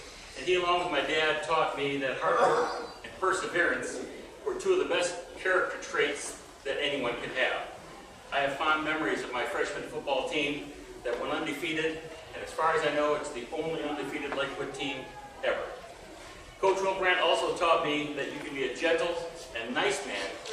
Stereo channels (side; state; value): both; identical; correlation 1.00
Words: and he, along with my dad, taught me that hard work and perseverance were two of the best character traits that anyone could have. I have fond memories of my freshman football team that went undefeated, and as far as I know, it's the only undefeated Lakewood team ever. Coach Wilbrand also taught me that you can be a gentle and nice man